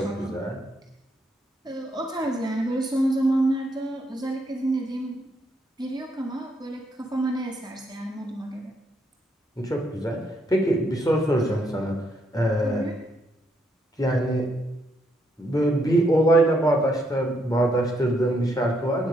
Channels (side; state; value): both; normal; correlation 0.75